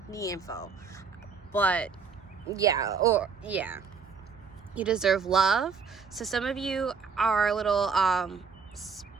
info. But yeah, you deserve love. So some of you are a little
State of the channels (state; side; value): quieter; left; 5.5 dB